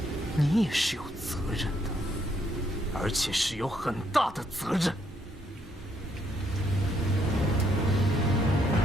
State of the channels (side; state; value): both; normal; correlation 0.73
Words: 你也是有责任的，而且是有很大的责任。